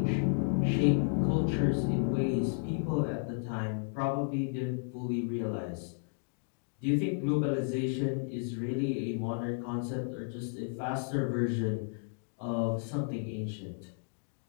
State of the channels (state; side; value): silent; right; digital silence